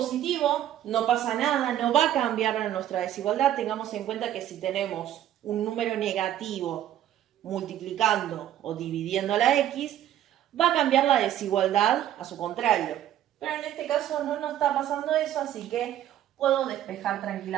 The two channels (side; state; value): left; quieter; 11.9 dB